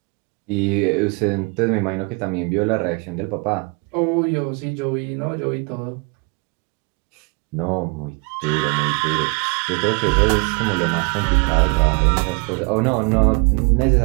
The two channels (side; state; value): left; quieter; 32.7 dB